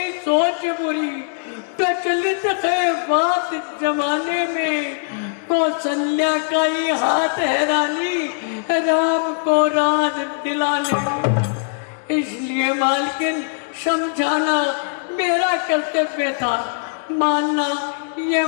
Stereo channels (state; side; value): silent; right; digital silence